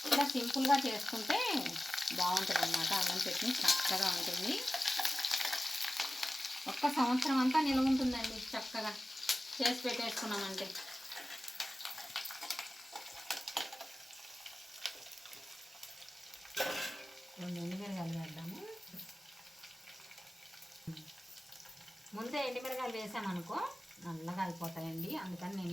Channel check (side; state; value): both; normal; correlation 0.95